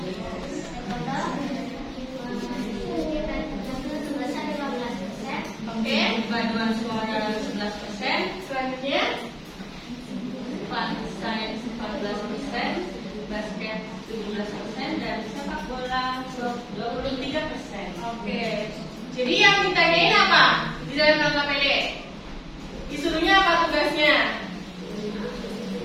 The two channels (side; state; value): both; identical; correlation 1.00